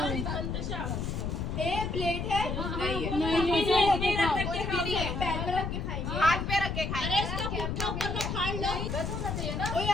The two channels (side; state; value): left; noise; rumble, 3 dB below the sound